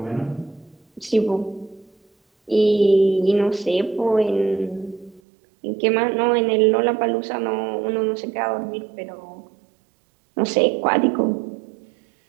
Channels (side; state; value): left; drops out; at 5.2 s